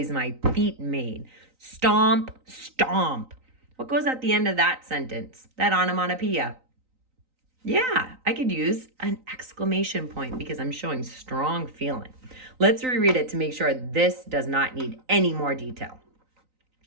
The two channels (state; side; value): late; left; 3.9 ms